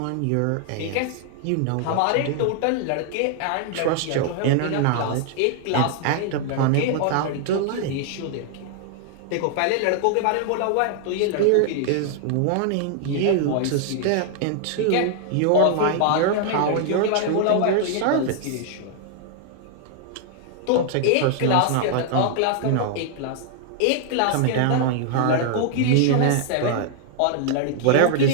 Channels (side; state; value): both; different; correlation 0.00